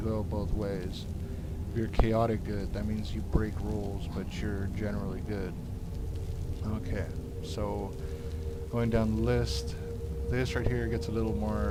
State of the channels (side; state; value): both; identical; correlation 1.00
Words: go both ways. If you're chaotic good, that means you break rules, but you're generally good. Okay, so going down the list, this right here gets a little